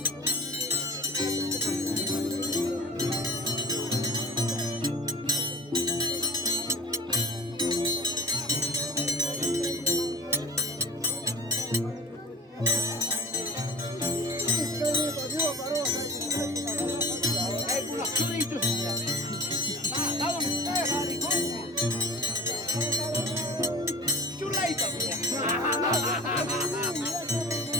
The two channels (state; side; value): normal; both; correlation 0.40